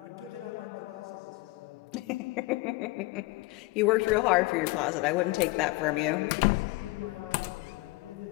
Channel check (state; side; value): quieter; right; 21.8 dB